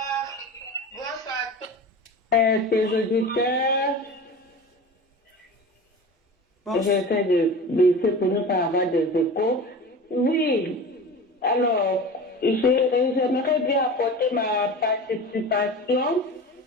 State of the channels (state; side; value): normal; both; correlation 0.33